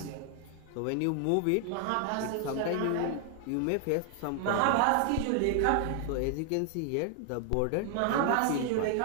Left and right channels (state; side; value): different; both; correlation 0.00